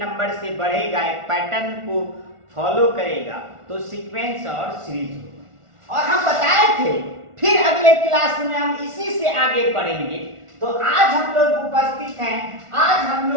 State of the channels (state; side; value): late; left; 1.4 ms